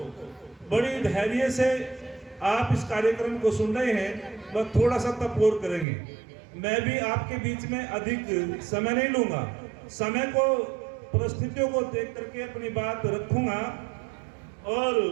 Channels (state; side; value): drops out; left; at 5.9 s